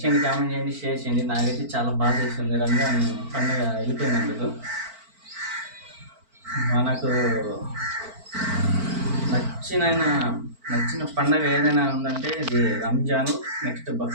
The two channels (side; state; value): left; late; 4.5 ms